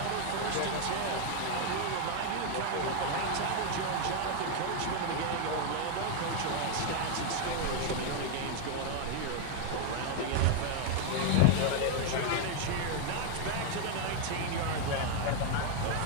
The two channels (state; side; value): different; both; correlation 0.00